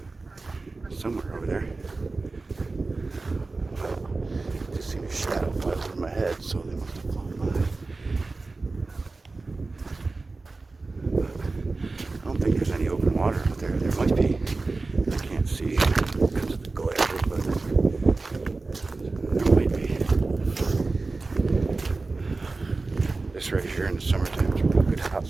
somewhere over there. Just seen a shadow fly over my head, so they must have flown by. I don't think there's any open water out there. There might be. I can't see because of the glare, but there might be. This right here in the summertime is a real good hot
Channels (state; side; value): quieter; left; 3.6 dB